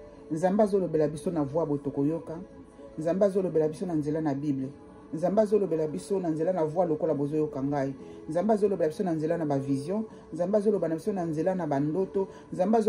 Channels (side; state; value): both; identical; correlation 1.00